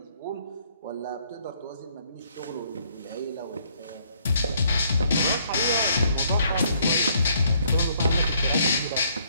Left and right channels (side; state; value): both; inverted; correlation -0.68